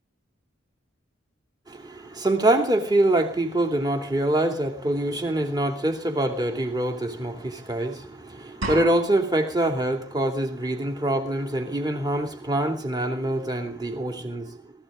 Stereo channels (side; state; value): both; normal; correlation 0.68